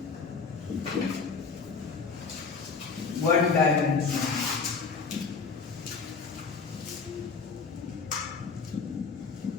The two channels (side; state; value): right; quieter; 5.1 dB